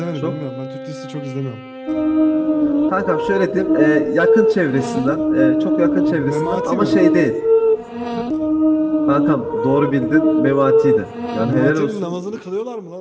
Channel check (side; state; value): both; identical; correlation 1.00